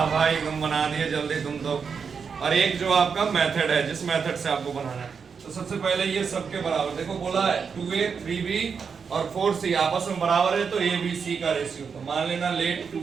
भाई तुम बना दिए जल्दी तुम तो। और एक जो आपका मेथड है, जिस मेथड से आपको बनाना है। तो सबसे पहले ये सबके बराबर, देखो बोला है 2a 3b और 4c आपस में बराबर है, तो a b c का रेशियो। तो मान लेना let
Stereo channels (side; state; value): left; quieter; 6.0 dB